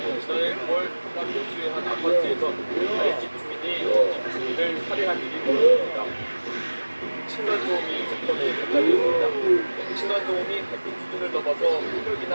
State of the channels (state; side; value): inverted; both; correlation -1.00